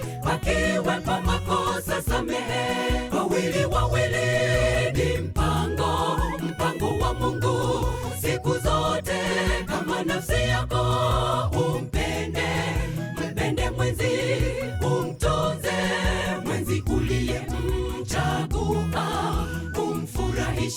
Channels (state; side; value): identical; both; correlation 1.00